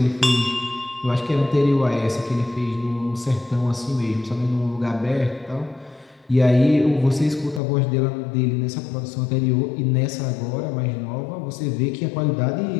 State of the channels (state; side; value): drops out; right; at 7.6 s